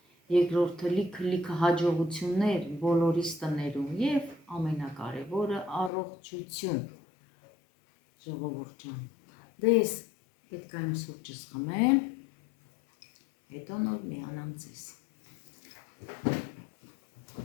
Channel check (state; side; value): drops out; right; at 5.9 s